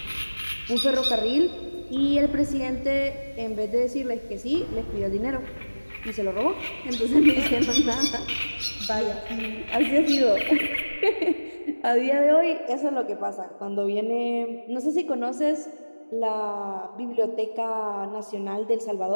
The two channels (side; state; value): both; inverted; correlation -1.00